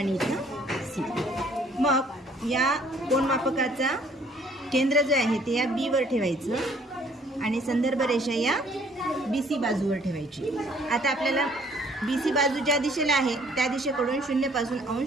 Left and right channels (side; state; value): both; normal; correlation 0.60